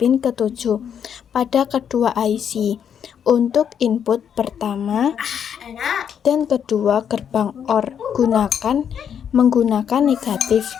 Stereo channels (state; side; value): quieter; right; 8.3 dB